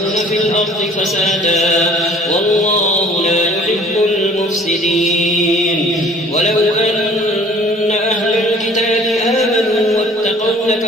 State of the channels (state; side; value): normal; both; correlation 0.52